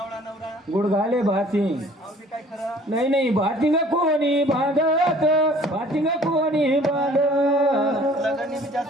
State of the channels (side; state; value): both; normal; correlation 0.53